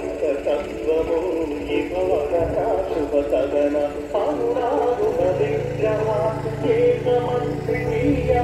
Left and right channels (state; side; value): identical; both; correlation 1.00